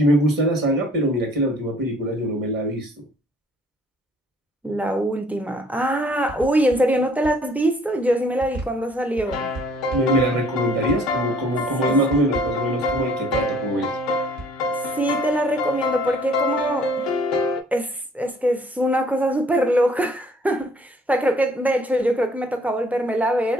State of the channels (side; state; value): both; normal; correlation 0.57